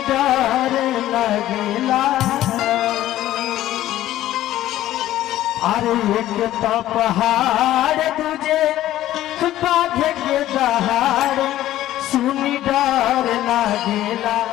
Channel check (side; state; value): right; quieter; 13.9 dB